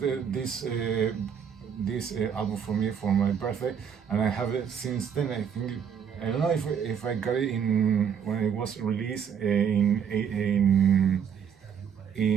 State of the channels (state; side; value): quieter; left; 7.7 dB